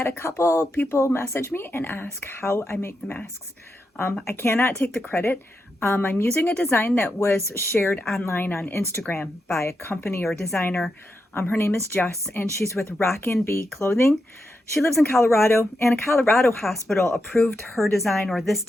a couple people message me and ask how I make the masks. I cannot take the credit. I'm using a design that was shared online on Instagram by a company or designer. Her name is Jess and she's with Rockin' Bee Clothing. She lives in Colorado and a Colorado hospital approved her design or this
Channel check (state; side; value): normal; both; correlation 0.86